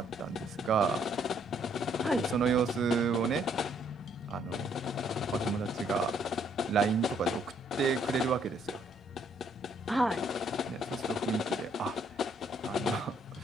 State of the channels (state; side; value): normal; both; correlation 0.67